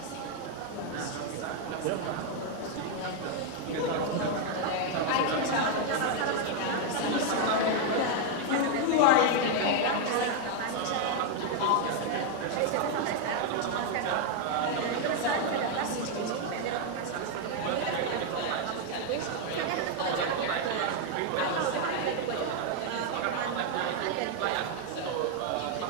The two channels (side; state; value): both; different; correlation 0.00